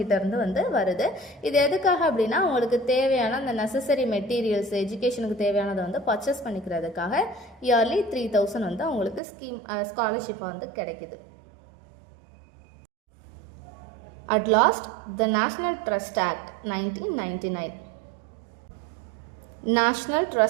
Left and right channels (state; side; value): drops out; left; at 9.2 s